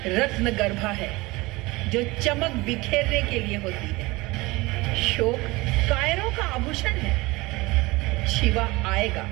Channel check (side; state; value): left; quieter; 22.1 dB